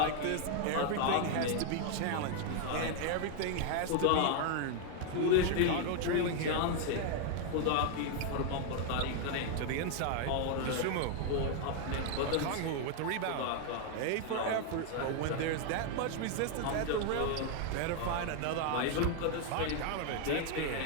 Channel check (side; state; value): both; different; correlation 0.00